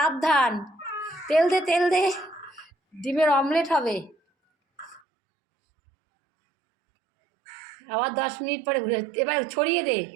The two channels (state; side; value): drops out; left; at 5.0 s